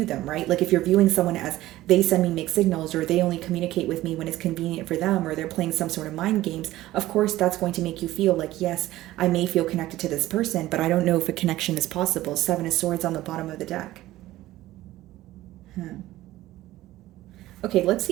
them, right? If you're viewing someone as they send me mixed signals, or they only communicate with me when it's convenient for them, or they're playing some sort of mind games, of course that's going to make you feel like, yes, I may feel connected to this person, but I don't know if a connection is possible. Seven of Swords on the bottom of the deck. Okay, let's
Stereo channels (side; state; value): left; quieter; 15.9 dB